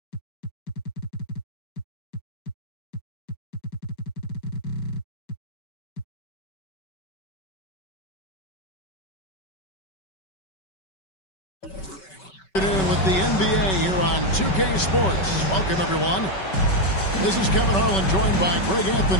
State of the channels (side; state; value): right; late; 5.2 ms